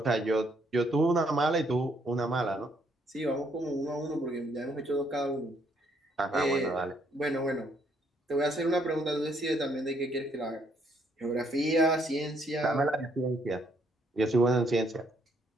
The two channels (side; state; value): both; normal; correlation 0.70